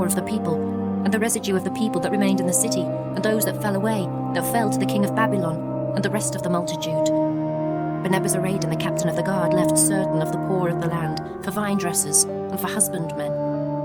of the people, and the residue of the people that remained in the city, and those that fell away, that fell to the king of Babylon, and the rest of the multitude. But Nebuzaradan the captain of the guard left certain of the poor of the land for vine dressers and for husbandmen.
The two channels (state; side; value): identical; both; correlation 1.00